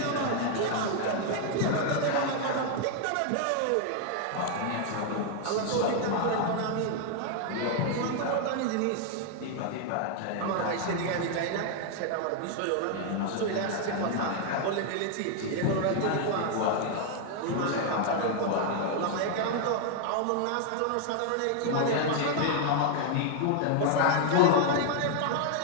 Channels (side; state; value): both; different; correlation 0.00